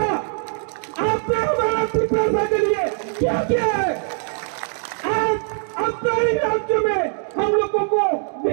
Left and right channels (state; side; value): silent; left; 56 dB below the other